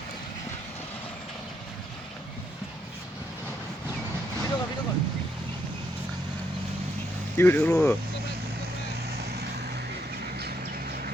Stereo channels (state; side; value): normal; both; correlation 0.75